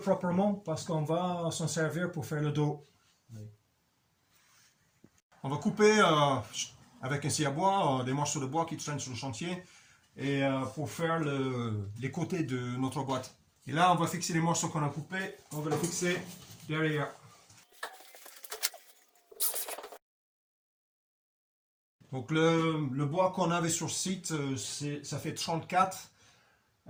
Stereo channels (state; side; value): identical; both; correlation 1.00